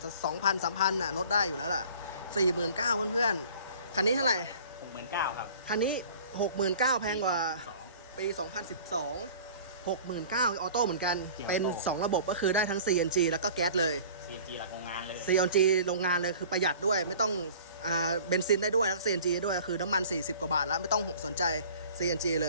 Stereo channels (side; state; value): both; inverted; correlation -0.46